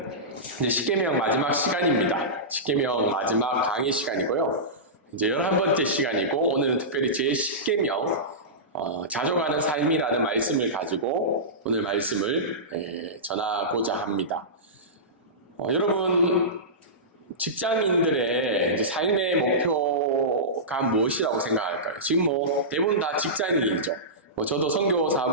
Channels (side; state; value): both; normal; correlation -0.18